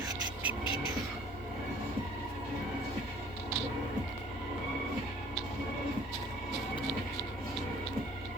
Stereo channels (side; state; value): both; normal; correlation 0.53